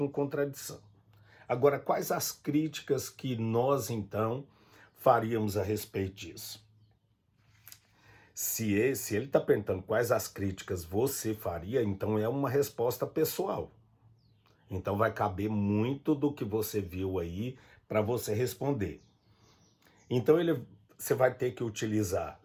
contradição. Agora, quais as críticas que nós, então, faríamos a respeito disso? Se ele está perguntando quais as críticas você faria, então é uma resposta pessoal. Então vai caber muito do que você viu aí para você responder. Então você vai ter que utilizar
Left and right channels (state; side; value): identical; both; correlation 1.00